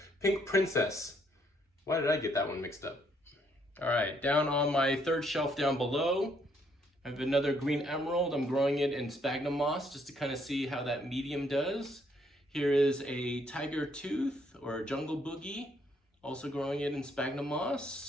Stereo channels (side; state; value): both; normal; correlation 0.70